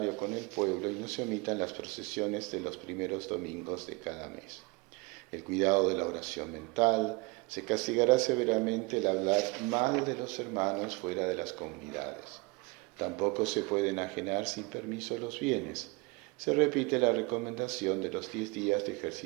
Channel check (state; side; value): quieter; left; 27.3 dB